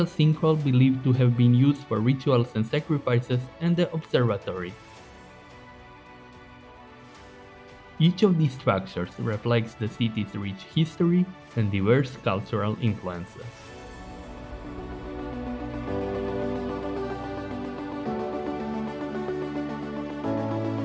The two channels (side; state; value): both; identical; correlation 1.00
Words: sinkhole believed to have been used for rituals and sacrifices, and the observatory. Each of these structures reflects the city's rich history and diverse cultural influences.